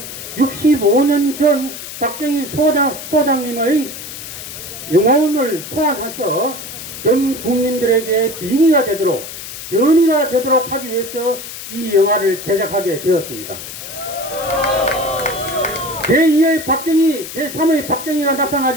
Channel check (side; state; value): left; noise; hiss, 10 dB below the sound